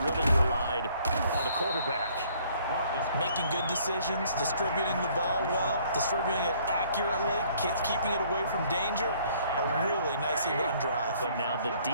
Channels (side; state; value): both; inverted; correlation -0.61